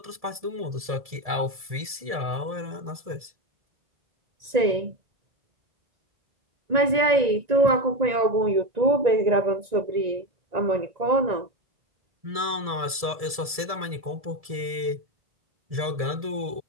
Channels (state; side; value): late; left; 1.7 ms